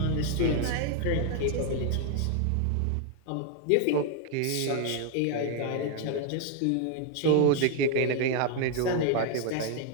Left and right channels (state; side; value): different; both; correlation 0.00